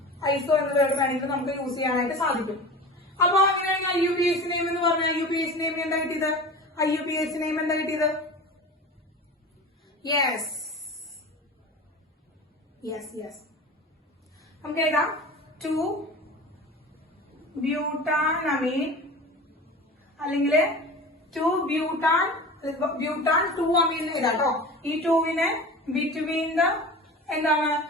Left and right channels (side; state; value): both; normal; correlation 0.34